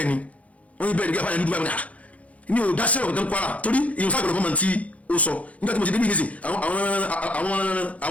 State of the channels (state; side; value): late; right; 0.066 ms